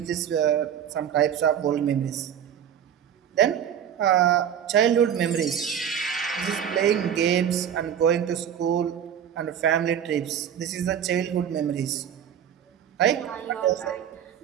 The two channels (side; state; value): left; quieter; 9.1 dB